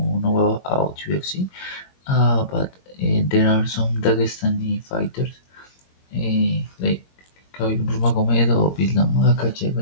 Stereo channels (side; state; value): right; late; 22 ms